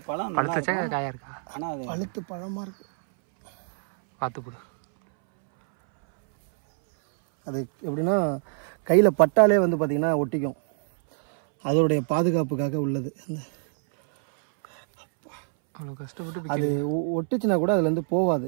பழம் பழுத்தச்சா காயா இருக்கா? ஆனால் அது பழுத்து பழமாக இருக்கு. பார்த்து போடு. அது எப்படின்னா கையில் பட்டாலே வந்து பார்த்திங்கன்னா ஒட்டிக்கும். அதோடைய பாதுகாப்புக்காக உள்ளது. அந்த அவ்வளோ கஷ்டப்பட்டு அது ஒட்டுச்சுன்னா கூட அதுலேருந்து போகாது.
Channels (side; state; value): left; silent; 61 dB below the other